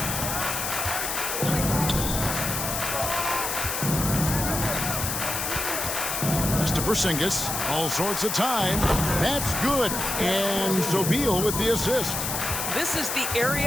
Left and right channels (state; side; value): noise; left; hiss, 2 dB below the sound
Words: To Porzingis, all sorts of time. That's good. And so Beal with the assist. This is the